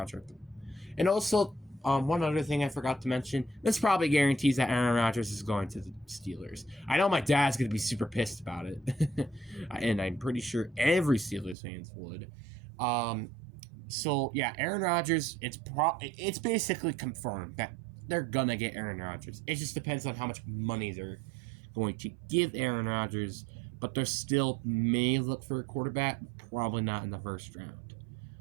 And also, one other thing I forgot to mention, this probably guarantees that Aaron Rodgers is going to the Steelers. I know my dad's going to be super pissed about it, and I'm pretty sure every Steelers fans would. So yeah, Aaron Rodgers, it's basically confirmed that they're gonna get Aaron Rodgers. It just depends on how much money they're going to give Aaron Rodgers, but they still may look for a quarterback, probably not in the first round.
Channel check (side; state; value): left; drops out; at 11.6 s